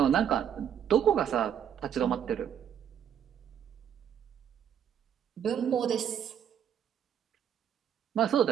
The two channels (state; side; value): quieter; left; 9.0 dB